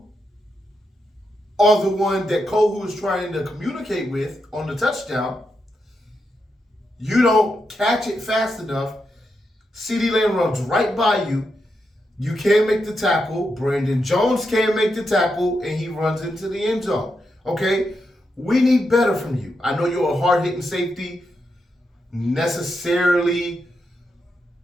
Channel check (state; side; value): normal; both; correlation 0.85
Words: are the one that Kohu is trying to communicate with on the touchdown. You don't catch it fast enough. CeeDee Lamb runs right by you. You can't make the tackle. Brandon Jones can't make the tackle, and he runs into the end zone. Okay? We need better from you. I know you're a hard-hitting safety. Necessarily,